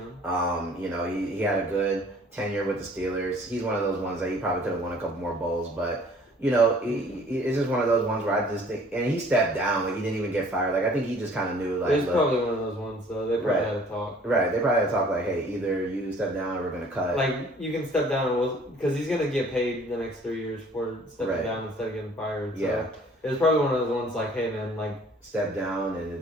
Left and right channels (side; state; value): both; normal; correlation 0.54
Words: He had a good tenure with the Steelers. He's one of those ones that he probably could have won a couple more bowls, but it's just one of those ones where I just think, and he stepped down, he didn't even get fired. I think he just kind of knew, it's probably one of those ones, though. They probably had to talk. Right, they probably had to talk hey, either you step down or we're gonna cut. You can step down, because he's gonna get paid the next 3 years for stepping down instead of getting fired. So yeah, it was probably one of those ones hey man, step down and